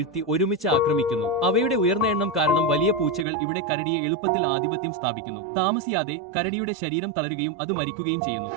ഒരുമിച്ച് ആക്രമിക്കുന്നു. അവയുടെ ഉയർന്ന എണ്ണം കാരണം വലിയ പൂച്ചകൾ ഇവിടെ കരടിയെ എളുപ്പത്തിൽ ആധിപത്യം സ്ഥാപിക്കുന്നു. താമസിയാതെ കരടിയുടെ ശരീരം തളരുകയും അത് മരിക്കുകയും ചെയ്യുന്നു.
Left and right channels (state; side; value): drops out; left; at 3.2 s